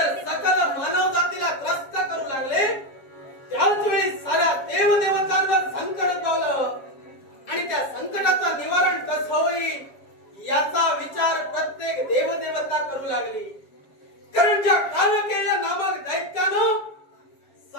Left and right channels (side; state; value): right; late; 7.3 ms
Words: सकल मानव जातीला त्रस्त करू लागले, त्याच वेळी साऱ्या देवदेवतांवर संकट उद्भवलं आणि त्या संकटाचं निवारण कसं होईल याचा विचार प्रत्येक देवदेवता करू लागली. कारण ज्या कालकेय नामक दैत्यानं